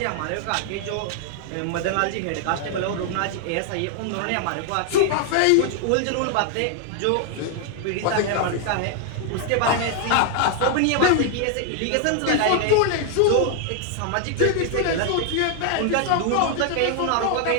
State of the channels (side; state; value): both; different; correlation 0.00